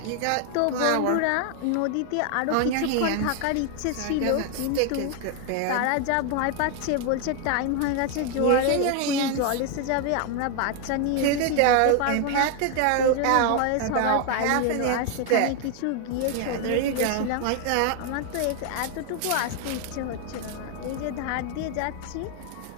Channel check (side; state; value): both; different; correlation 0.00